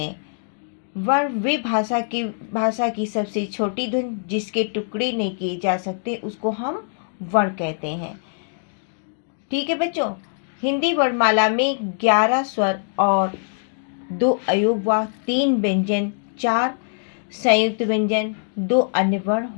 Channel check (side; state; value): right; silent; digital silence